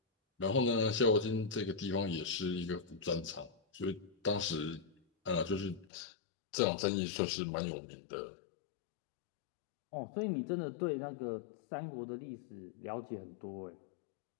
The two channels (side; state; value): right; drops out; at 5.9 s